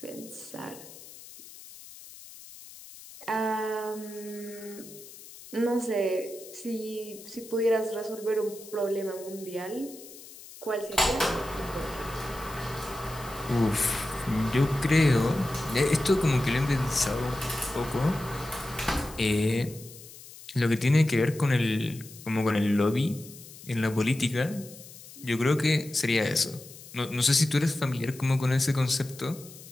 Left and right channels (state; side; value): noise; left; hiss, 17 dB below the sound